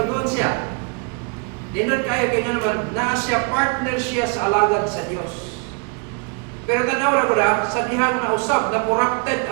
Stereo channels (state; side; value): quieter; left; 34.2 dB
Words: siya. Dinod kayo kaya naman, naa siya, partner siya sa alagad sa Diyos. Pero tanaw na ko na, sa dihang nausap, na corrupted